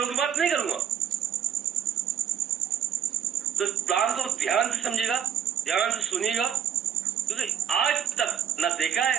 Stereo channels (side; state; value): left; quieter; 8.8 dB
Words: की बात नहीं करूंगा, तो प्लान को ध्यान से समझिएगा, ध्यान से सुनिएगा, क्योंकि आज तक ना देखा